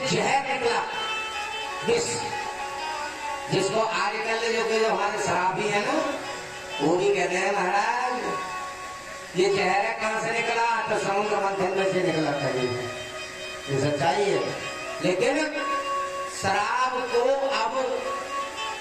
जहर निकला, विष, जिसको आजकल जो हमारे शराबी है ना वो भी कहते हैं महाराज ये जहर है, कहां से निकला, तो समुद्र मंथन में से निकला था। ये सच्चाई है। लेकिन शराब को अब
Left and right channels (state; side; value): identical; both; correlation 1.00